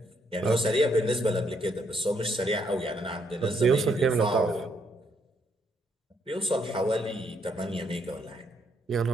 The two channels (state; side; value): normal; both; correlation 0.73